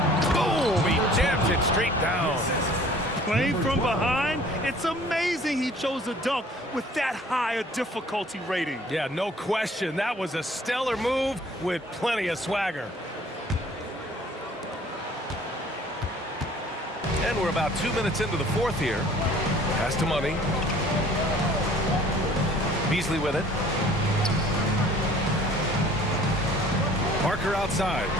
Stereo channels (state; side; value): normal; both; correlation 0.52